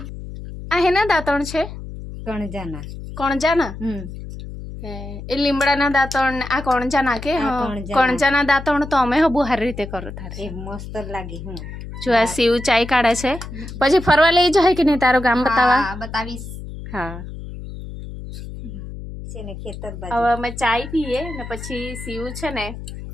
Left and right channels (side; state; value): left; noise; hum, 11 dB below the sound